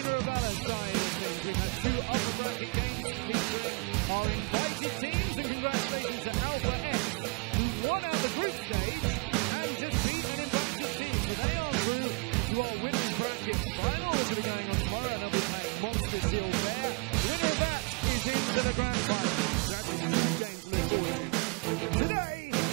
of Valor side of things, we've had two upper bracket games featuring our invited teams, and congratulations to Alpha X, who won out the group stage and just beat an invited team. So they are through to our winners bracket final, which will be going on tomorrow, and they'll be playing Monster Shield there. The winner of that is into the grand final. So that's a huge game to look forward to. Today,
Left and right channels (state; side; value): quieter; left; 32.6 dB